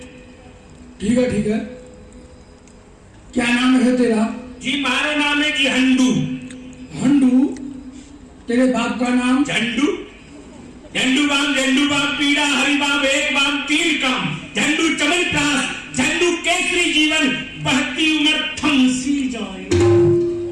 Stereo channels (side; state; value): both; identical; correlation 1.00